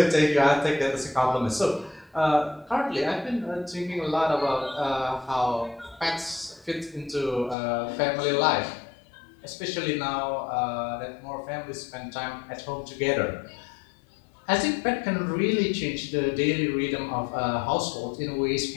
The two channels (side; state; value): right; drops out; at 7.6 s